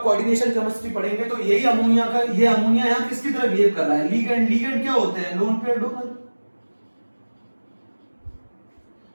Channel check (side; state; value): both; inverted; correlation -1.00